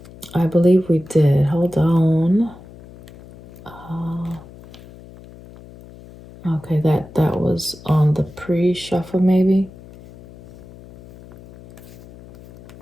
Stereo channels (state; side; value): noise; left; hum, 20 dB below the sound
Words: I believe we did. Hold on. Okay, that was on the pre-shuffle, maybe.